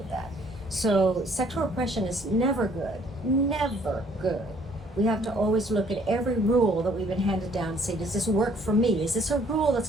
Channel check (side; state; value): both; normal; correlation 0.61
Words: that. So sexual repression is never good, never good. We have to always look at every rule that we've been handed down and say, does this work for me? Is this a rule that's